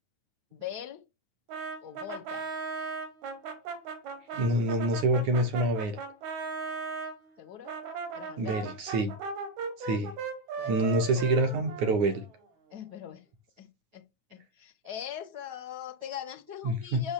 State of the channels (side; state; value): left; late; 9.6 ms